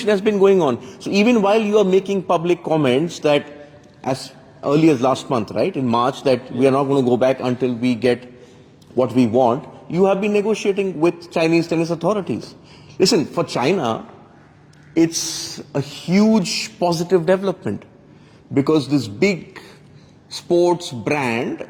has been going on. So even while you are making public comments that as early as last month, right, in March, that we are not going to go back until we get what we want, you have been negotiating with Chinese tennis authorities. Listen, for China, it's a huge positive development because this big sports brand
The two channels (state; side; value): identical; both; correlation 1.00